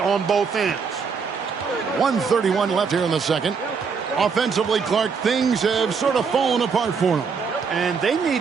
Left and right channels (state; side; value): quieter; left; 5.6 dB